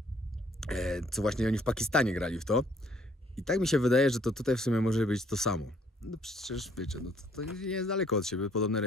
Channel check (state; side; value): normal; both; correlation 0.63